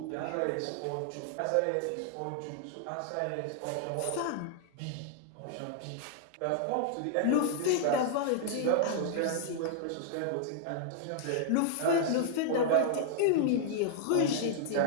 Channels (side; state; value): both; different; correlation -0.01